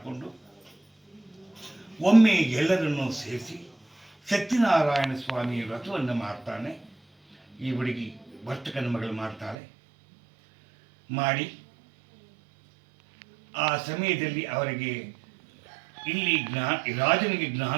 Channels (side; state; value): left; drops out; at 9.6 s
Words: ಒಮ್ಮೆ ಎಲ್ಲರನ್ನೂ ಸೇರಿಸಿ ಸತ್ಯನಾರಾಯಣ ಸ್ವಾಮಿ ವ್ರತವನ್ನು ಮಾಡ್ತಾನೆ. ಈ ಹುಡುಗಿ ವರ್ತಕನ ಮಗಳು ಮಾಡ್ತಾಳೆ. ಮಾಡಿ ಆ ಸಮಯದಲ್ಲಿ ಅವರಿಗೆ ರಾಜನಿಗೆ